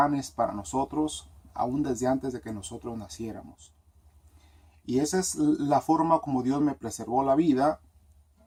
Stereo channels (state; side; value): identical; both; correlation 1.00